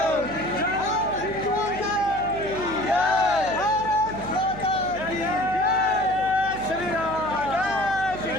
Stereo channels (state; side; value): noise; right; hum, 12 dB below the sound